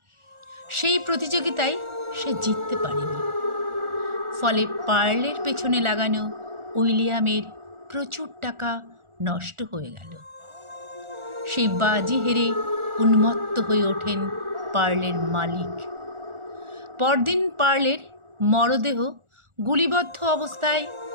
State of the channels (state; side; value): late; left; 1.4 ms